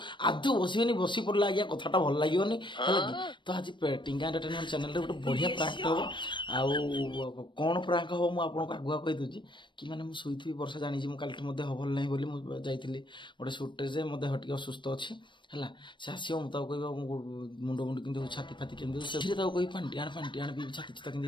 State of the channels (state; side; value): late; right; 0.23 ms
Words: आदु बसिबेनी बसी पड़ला आज्ञा कथाटा भल लागियोनी तो आज टिंगा एंटरटेनमेंट चैनल रे गोटे बढ़िया प्रांक हो आउ कौन प्रांक हो मु आपन को आगुआ कहि दूची कि माने मु सोइथि वर्षा जानि मु काल मध्ये हबल नाही बोली मु जाइथिली गोटे शूट रे जे मो देह टिके असुस्थ अछि हला से आसियो मु ताऊ कहबा मुंड मुंड किंतु छाती फाती किंतु से ताऊ कहि पांटियाण भी छाती चिता